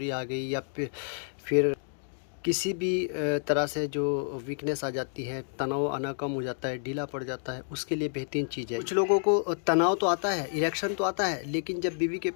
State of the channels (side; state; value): right; silent; 58 dB below the other